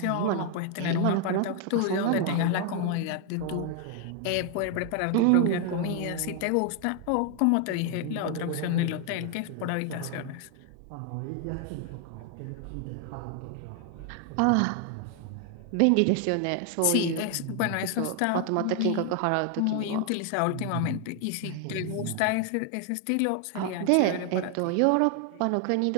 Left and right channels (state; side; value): different; both; correlation 0.00